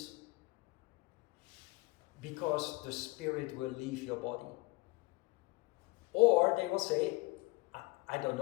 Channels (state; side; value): quieter; right; 22.7 dB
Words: because the spirit will leave your body. Or they will say, I don't